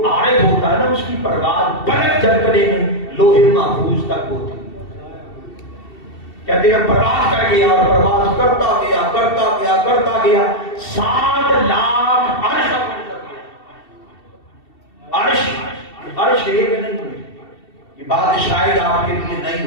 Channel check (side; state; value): right; late; 2.7 ms